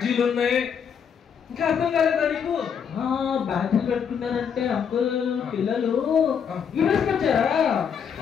ఉన్నాయి. ఇంకా అర్థం కాలేదా నీకు? బ్యాడ్జీలు పెట్టుకున్నారంటే అంకుల్ పిల్లలు వచ్చారా?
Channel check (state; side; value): quieter; right; 7.3 dB